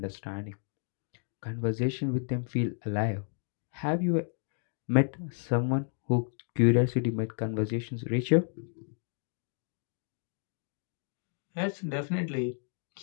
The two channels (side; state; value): right; silent; 57 dB below the other